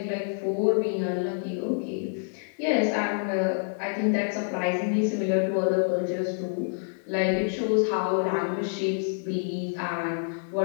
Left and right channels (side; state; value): right; silent; 58 dB below the other